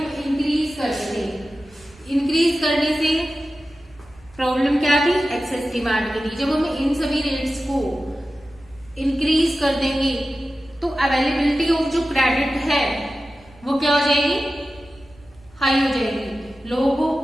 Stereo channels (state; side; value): noise; right; rumble, 26 dB below the sound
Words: इंक्रीज करते थे. इंक्रीज करने से प्रॉब्लम क्या थी? एक्सेस डिमांड की थी. जब हम इन सभी रेट्स को इंक्रीज कर देंगे तो अवेलेबिलिटी ऑफ जो क्रेडिट है वो क्या हो जाएगी? हाई हो जाएगी. लोगों